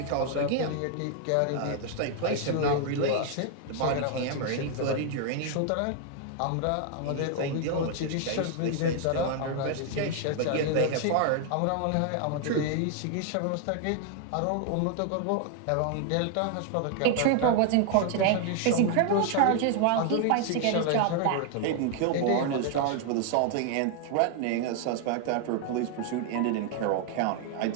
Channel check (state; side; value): different; both; correlation 0.00